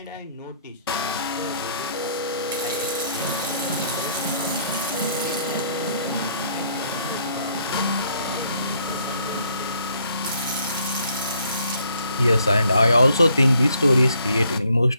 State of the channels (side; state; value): both; inverted; correlation -0.67